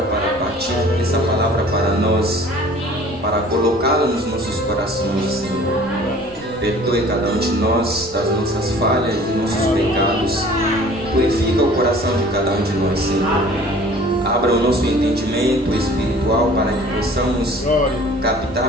para partir essa palavra para nós, para colocá-la nos nossos corações, Senhor. Perdoe cada um de nós das nossas falhas e nossos pecados. Purifica o coração de cada um de nós, Senhor. Abra o nosso entendimento espiritual para que possamos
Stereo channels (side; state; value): right; noise; rumble, 21 dB below the sound